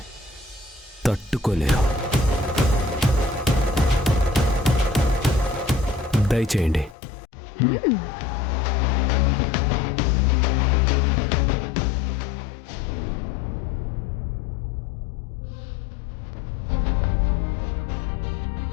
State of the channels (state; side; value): drops out; right; at 7.0 s